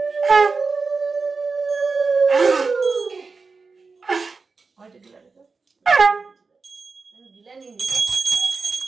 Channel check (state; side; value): quieter; left; 4.4 dB